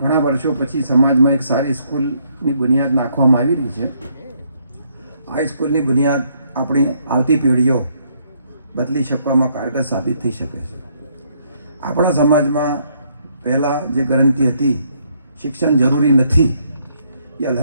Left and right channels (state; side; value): inverted; both; correlation -0.70